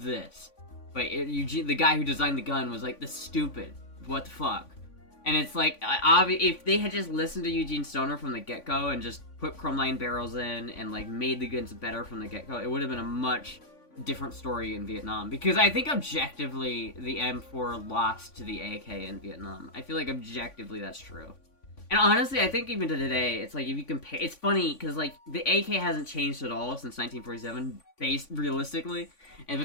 this. But Eugene, the guy who designed the gun, was like, "This stupid. What the fuck?" And it's like, if they had just listened to Eugene Stoner from the get-go and just put chromeline barrels in and, like, made the guns better from the get-go, it would have been a much different story in Vietnam. Because I think objectively, the M4 lost to the AK in Vietnam. I feel like objectively that's true. And honestly, I think even to today, it's like, if you compare... It's funny, because, like, the AK hasn't changed at all since 1947, realistically.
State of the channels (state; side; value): late; right; 3.5 ms